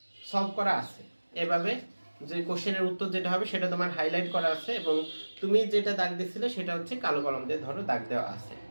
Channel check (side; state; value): both; inverted; correlation -1.00